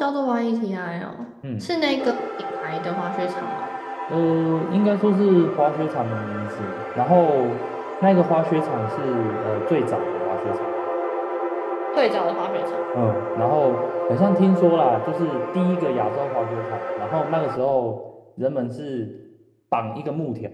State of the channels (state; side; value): identical; both; correlation 1.00